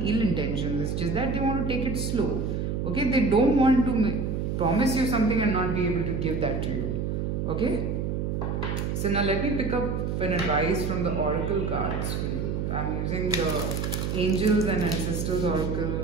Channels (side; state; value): right; noise; hum, 1 dB below the sound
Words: ill intentions. It's just that they want to take it slow, okay? They don't want to promise you something and not be able to give that to you, okay? So now let me pick up an advice from the oracle cards for you. I'm using the Angels and Ancestors